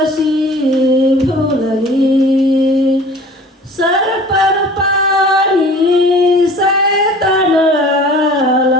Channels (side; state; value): both; normal; correlation 0.46